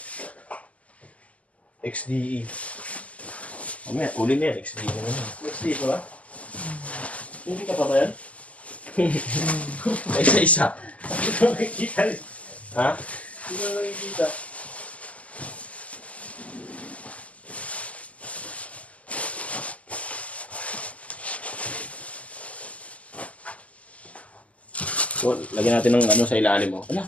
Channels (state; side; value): late; right; 0.069 ms